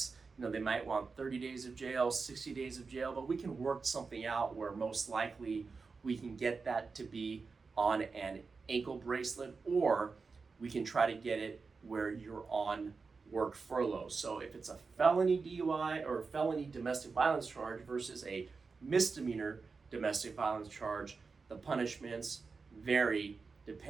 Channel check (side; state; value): left; quieter; 4.6 dB